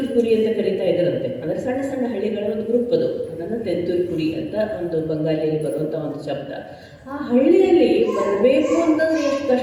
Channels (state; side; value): identical; both; correlation 1.00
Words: ಅಂತ ಕರೀತಾ ಇದ್ದರಂತೆ. ಅಂದರೆ ಸಣ್ಣ ಸಣ್ಣ ಹಳ್ಳಿಗಳ ಒಂದು ಗ್ರೂಪ್ ಅದು. ಅದನ್ನು ತೆಂತೂಲ್ಪುರಿ ಅಂತ ಒಂದು ಬಂಗಾಳಿಯಲ್ಲಿ ಬರುವಂಥ ಒಂದು ಶಬ್ದ. ಆ ಹಳ್ಳಿಯಲ್ಲಿ ಬರಬೇಕು ಅಂತಂದರೆ ಎಷ್ಟು